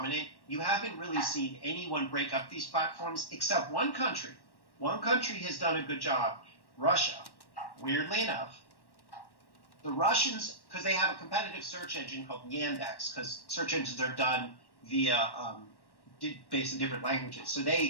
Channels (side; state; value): right; late; 1.1 ms